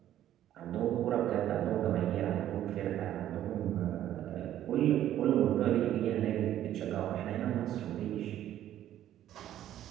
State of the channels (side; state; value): left; quieter; 12.0 dB